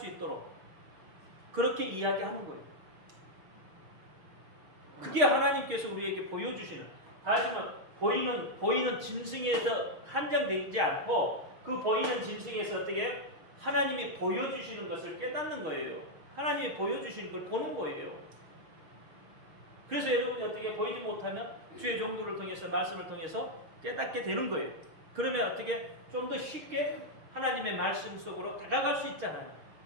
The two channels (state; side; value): late; left; 6.4 ms